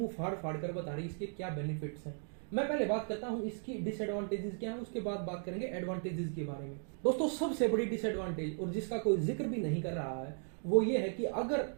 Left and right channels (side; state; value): left; silent; 53 dB below the other